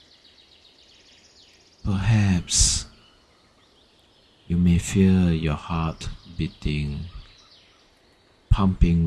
Perhaps you may feel your heart beating, pumping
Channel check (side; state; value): both; identical; correlation 1.00